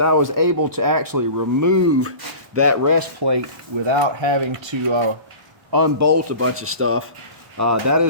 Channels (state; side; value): late; left; 1.1 ms